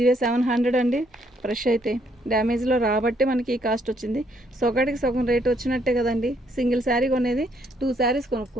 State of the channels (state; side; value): normal; both; correlation 0.70